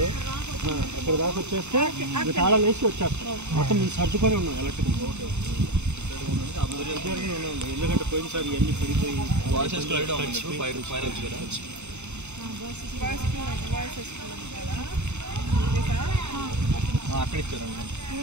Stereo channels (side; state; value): left; late; 0.82 ms